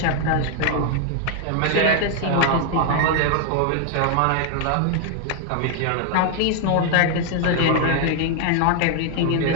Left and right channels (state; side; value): different; both; correlation 0.00